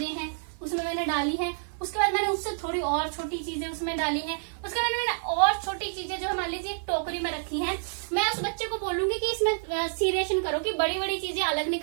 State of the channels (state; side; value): silent; left; 59 dB below the other